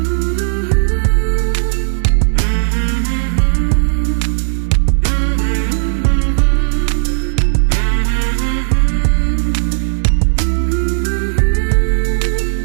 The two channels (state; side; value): silent; left; digital silence